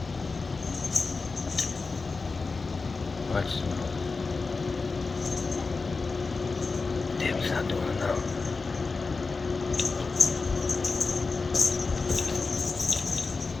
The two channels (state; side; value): quieter; right; 4.2 dB